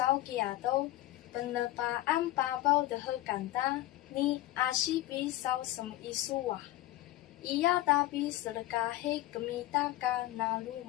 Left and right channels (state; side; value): quieter; right; 16.1 dB